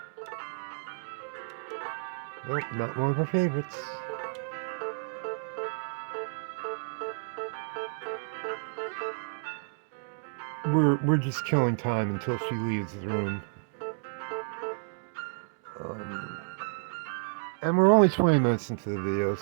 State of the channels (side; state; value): left; silent; digital silence